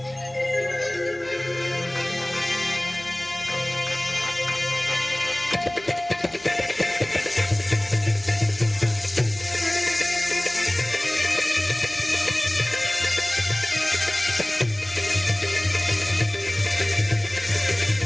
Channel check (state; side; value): noise; left; hum, 28 dB below the sound